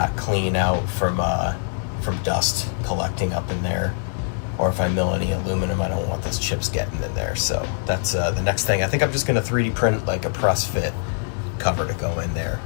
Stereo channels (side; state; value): right; silent; digital silence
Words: clean out from dust collecting up in there. Or if I mill any aluminum, I don't want those chips getting in there. So that's the next thing. I think I'm just going to 3D print like a press fit cover to go in there.